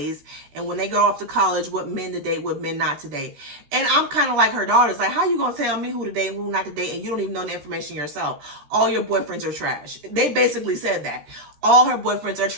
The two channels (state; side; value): late; left; 14 ms